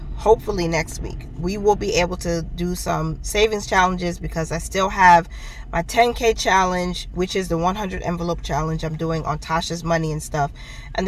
hopefully next week, we will be able to do some savings challenges, because I still have my 10K challenge, which is the 100 envelope challenge I'm doing on Tasha's money and stuff. And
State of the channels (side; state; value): both; identical; correlation 1.00